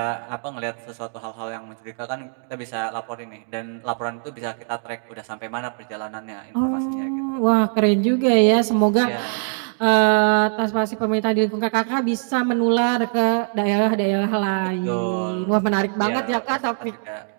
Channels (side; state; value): left; silent; 64 dB below the other